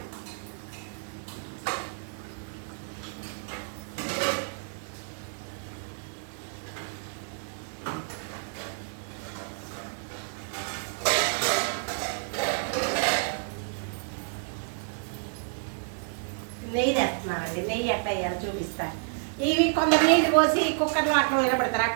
నెయ్యి వేస్తున్నానండి. నెయ్యి ఎట్లా వేయాలో చూపిస్తాను. ఇవి కొందరు నీళ్ళు పోసి కుక్కర్లో అట్లా నిలబెడతారు,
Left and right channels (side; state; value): left; silent; digital silence